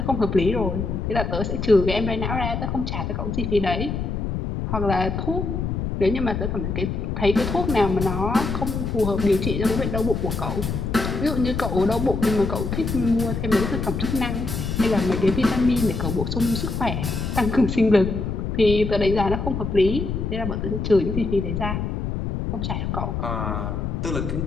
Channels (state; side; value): noise; left; rumble, 3 dB below the sound